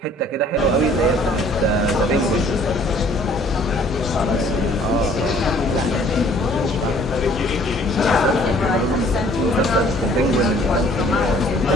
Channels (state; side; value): normal; both; correlation 0.56